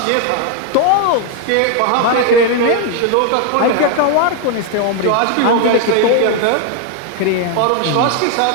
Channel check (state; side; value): different; both; correlation 0.01